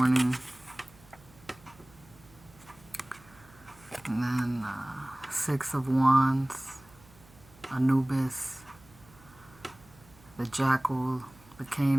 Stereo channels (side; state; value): right; noise; hum, 25 dB below the sound